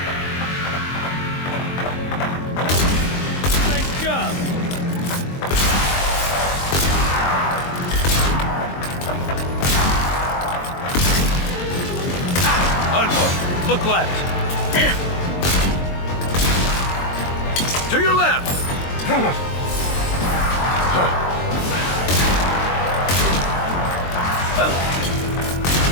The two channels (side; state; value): right; late; 22 ms